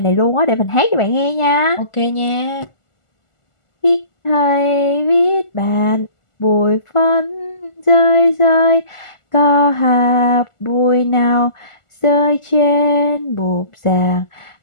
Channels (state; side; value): late; right; 1.4 ms